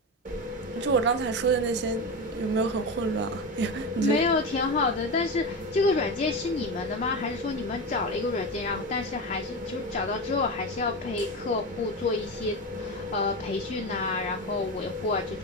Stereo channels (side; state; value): both; normal; correlation 0.20